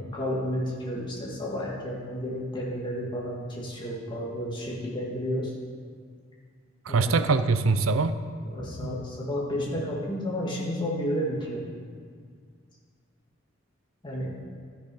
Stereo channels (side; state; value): both; normal; correlation 0.47